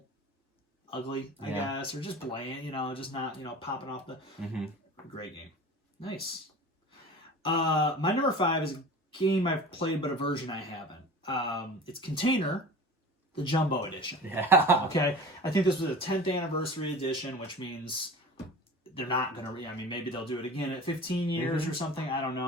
ugly, I guess, or just bland, just not, popping off the... Mm-hmm. Great game. Nice. My number 5 is a game I've played, but a version I haven't. It's Container, the Jumbo Edition. Yeah. Okay? I think this was a 10th anniversary edition, which means they're not going to... maybe they'll do it again at 15 years or something. I don't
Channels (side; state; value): both; normal; correlation 0.36